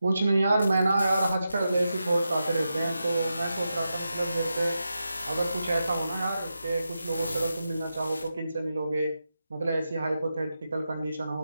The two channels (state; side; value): inverted; both; correlation -0.89